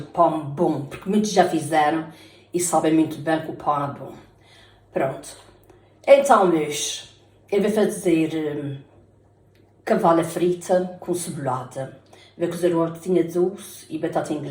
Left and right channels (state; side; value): identical; both; correlation 1.00